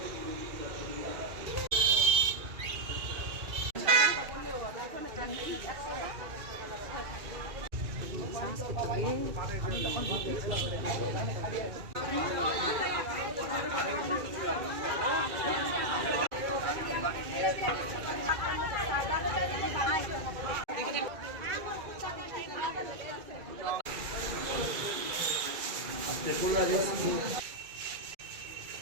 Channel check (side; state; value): left; late; 2.3 ms